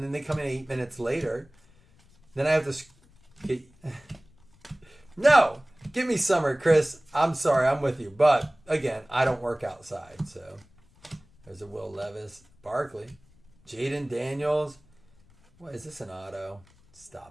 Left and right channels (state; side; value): noise; left; rumble, 29 dB below the sound